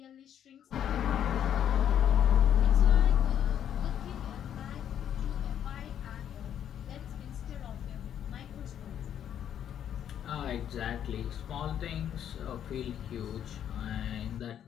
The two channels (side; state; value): right; quieter; 9.7 dB